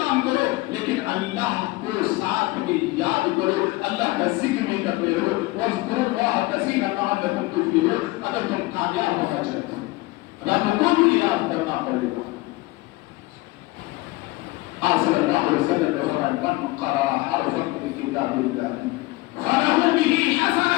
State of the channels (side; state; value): right; quieter; 20.6 dB